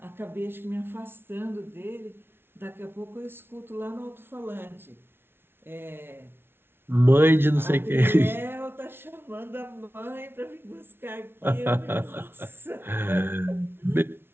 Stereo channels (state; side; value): late; left; 0.11 ms